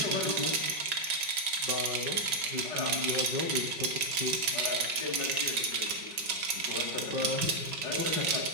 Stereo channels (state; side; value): late; left; 5.4 ms